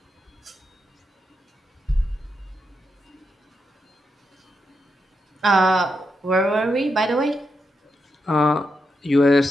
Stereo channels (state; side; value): normal; both; correlation 0.85